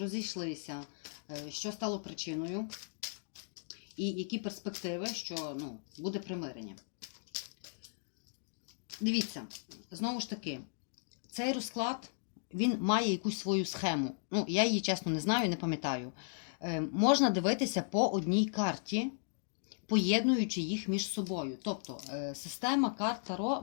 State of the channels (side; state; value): right; silent; digital silence